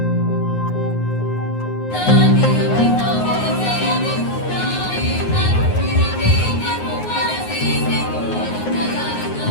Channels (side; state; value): right; late; 9.5 ms